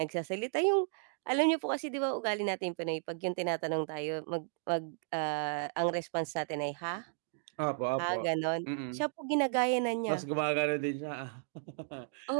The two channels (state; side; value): silent; left; digital silence